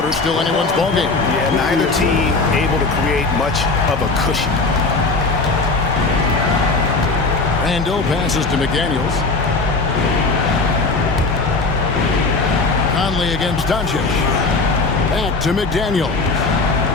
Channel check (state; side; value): quieter; right; 3.7 dB